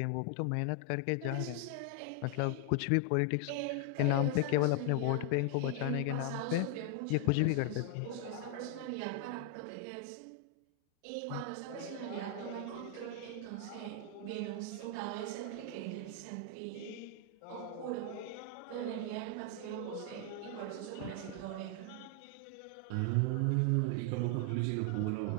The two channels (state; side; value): different; both; correlation 0.00